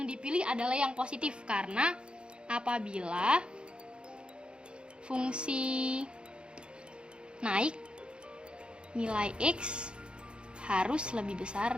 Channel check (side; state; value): left; late; 0.054 ms